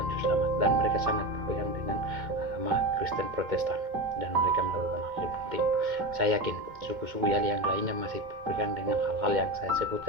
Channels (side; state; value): left; late; 2.2 ms